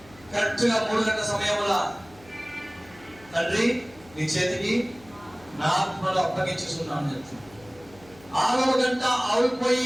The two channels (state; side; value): noise; left; hum, 24 dB below the sound